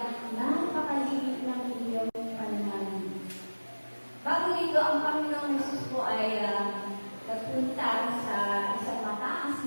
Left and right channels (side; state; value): both; inverted; correlation -1.00